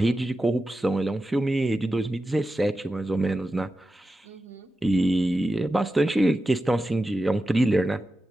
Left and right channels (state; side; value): normal; both; correlation 0.92